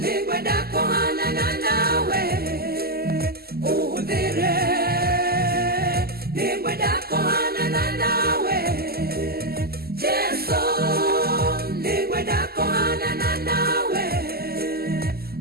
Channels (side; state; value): left; late; 0.45 ms